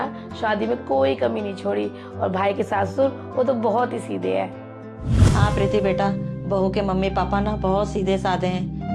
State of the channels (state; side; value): identical; both; correlation 1.00